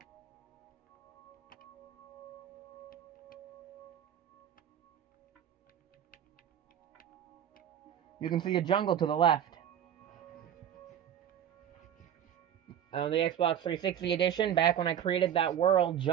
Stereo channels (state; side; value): quieter; left; 9.7 dB